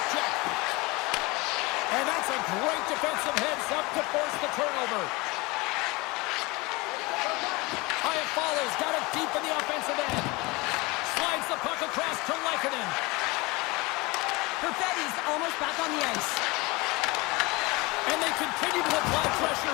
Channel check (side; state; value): right; quieter; 24.2 dB